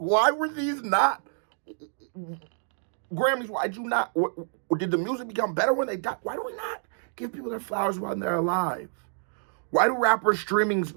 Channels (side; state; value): left; silent; digital silence